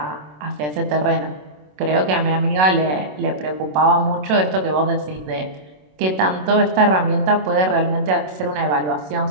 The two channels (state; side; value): late; left; 27 ms